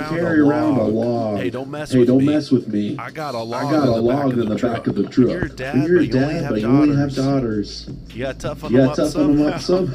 around a log. Hey, don't mess with me. I got a log in the back of the truck. You're a dad, but you only have daughters. You got to toughen them up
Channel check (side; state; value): both; identical; correlation 1.00